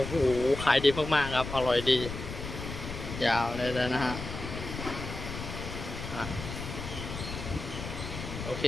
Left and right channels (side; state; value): left; noise; rumble, 8 dB below the sound